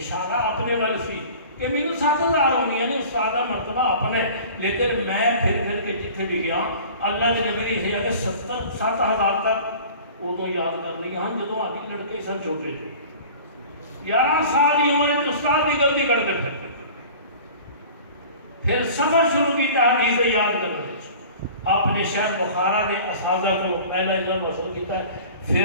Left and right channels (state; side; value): inverted; both; correlation -0.42